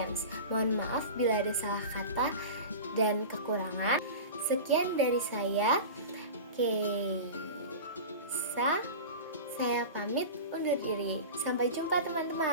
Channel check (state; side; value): inverted; both; correlation -0.30